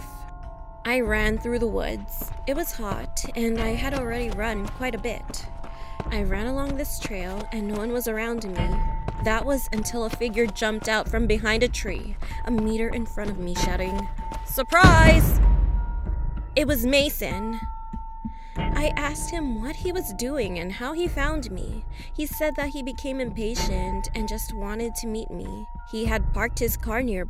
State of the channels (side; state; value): both; identical; correlation 1.00